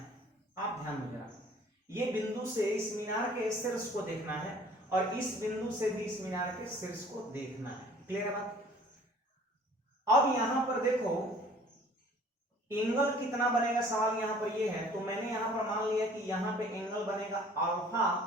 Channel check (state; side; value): normal; both; correlation 0.52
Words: आप ध्यान में जरा, ये बिंदु से इस मीनार के शीर्ष को देखना है और इस बिंदु से भी इस मीनार के शीर्ष को देखना है, क्लियर बात। अब यहां पर देखो एंगल कितना बनेगा, सवाल यहां पर ये है। तो मैंने यहां पर मान लिया कि यहां पे एंगल बनेगा अल्फा